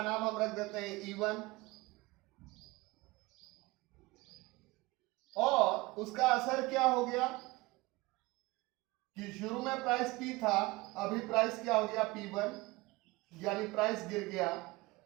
नाम हम रख देते हैं E1। और उसका असर क्या हो गया कि शुरू में प्राइस P था, अभी प्राइस क्या हो गया, P1, यानी प्राइस गिर गया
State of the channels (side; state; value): left; quieter; 21.9 dB